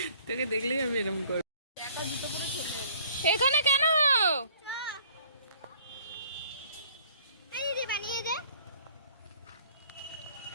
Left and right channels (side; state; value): both; inverted; correlation -0.56